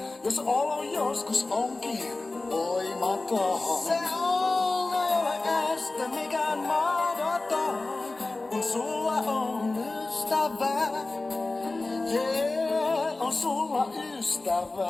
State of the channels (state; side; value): quieter; right; 3.3 dB